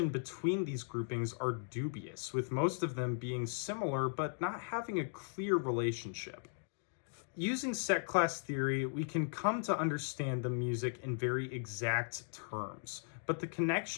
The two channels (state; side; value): silent; right; digital silence